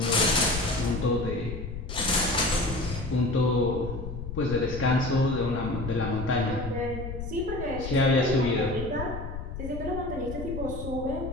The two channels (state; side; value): noise; left; rumble, 7 dB below the sound